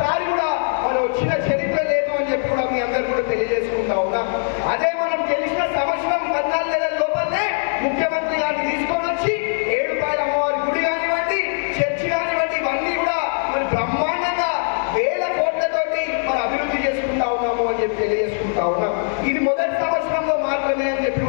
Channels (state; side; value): silent; right; 62 dB below the other